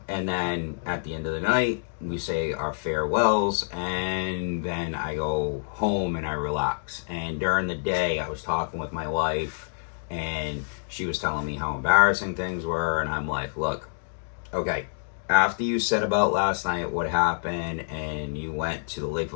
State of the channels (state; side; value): silent; right; digital silence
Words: then at the end of the night, we say our farewells, and then I go home and I relax. And during the day, I was talking with my wife, and she was telling me how embarrassing things were, and I'm like, look, okay, after you said about last night what happened, and you went to the